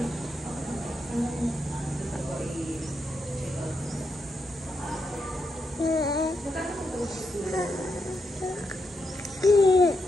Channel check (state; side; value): normal; both; correlation 0.83